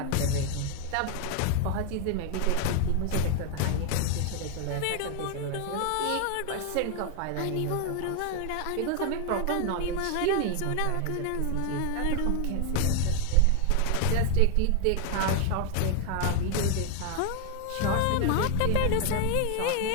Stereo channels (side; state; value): both; different; correlation 0.01